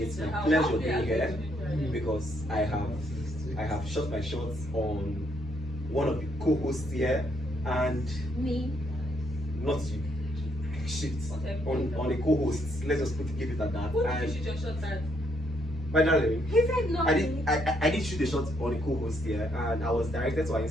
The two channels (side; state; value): both; normal; correlation 0.73